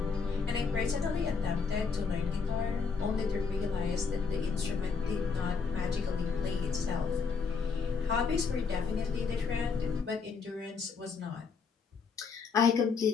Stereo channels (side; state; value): right; quieter; 5.3 dB